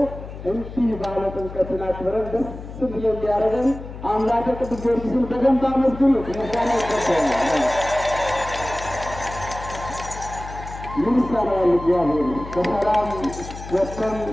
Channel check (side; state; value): left; noise; hum, 12 dB below the sound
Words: እንዲህ ባለ ጥምቀትን አክብረን ደስ ብሎ እንዲያደርገን አምላከ ቅዱስ ጊዮርጊስን በደንብ አመስግኑት። ምስጋና ይገባዋል። ምን ይሳነዋል? እግዚአብሔር በሰላም ወጥተን